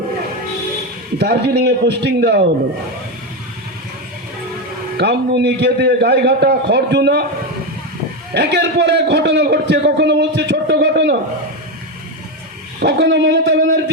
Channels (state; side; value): normal; both; correlation 0.11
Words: দার্জিলিং এ পোস্টিং দেওয়া হলো। কামদুনি, গেদে, গাইঘাটা, খড়জুনা, একের পর এক ঘটনা ঘটছে। কখনো বলছে ছোট্ট ঘটনা, কখনো মমতা